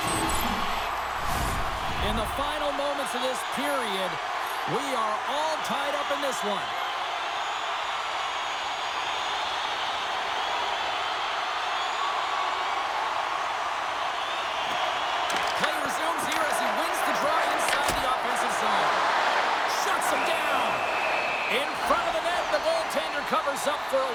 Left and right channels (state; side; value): identical; both; correlation 1.00